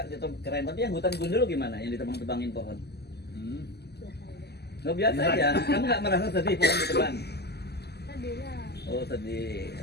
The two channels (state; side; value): late; right; 0.47 ms